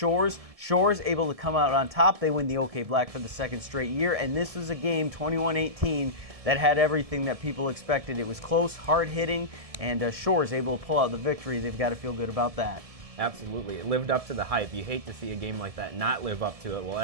Shores able to come out on top. They win the OK Black for the second straight year, and this was a game, 21-18, that had everything that people expected. It was close, hard-hitting, and Shores able to pull out the victory. They've got to feel good about that. Absolutely. It lived up to the hype. You hate to see a game like that not live up to it. Well, it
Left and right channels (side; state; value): left; late; 1.7 ms